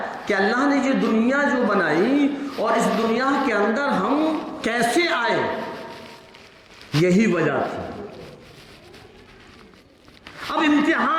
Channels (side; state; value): both; identical; correlation 1.00